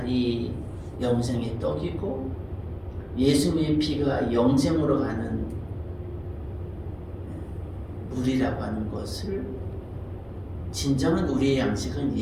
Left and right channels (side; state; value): both; identical; correlation 1.00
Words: 영생의 떡이고 예수님의 피가 영생으로 가는 물이라고 하는 것을, 진정한 우리의 양식은